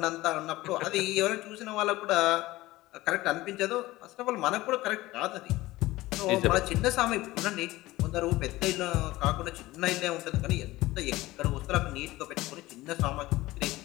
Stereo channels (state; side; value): quieter; right; 18.2 dB